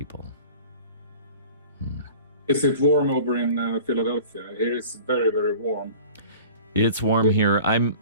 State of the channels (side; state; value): both; inverted; correlation -0.43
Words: Is it warm over in Philadelphia? Here it's very, very warm. It's warm here. I'm